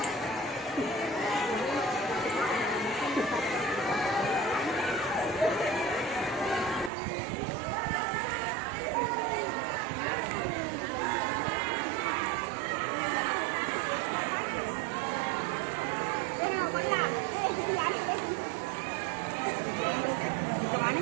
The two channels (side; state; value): left; drops out; at 6.9 s